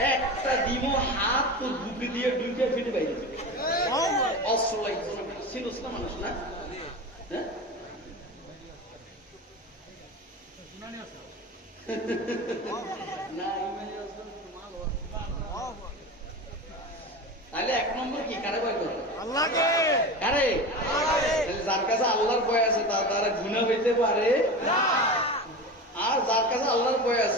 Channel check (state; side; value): normal; both; correlation 0.28